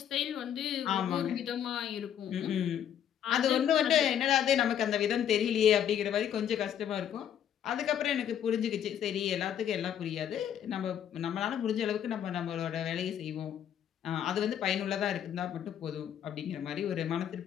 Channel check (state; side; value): quieter; right; 9.6 dB